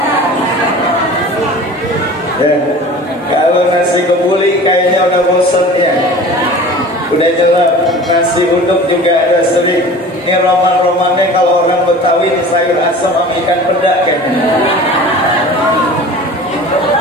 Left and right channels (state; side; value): normal; both; correlation 0.40